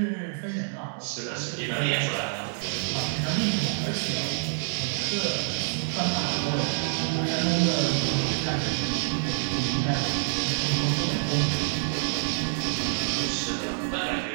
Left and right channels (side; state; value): left; silent; digital silence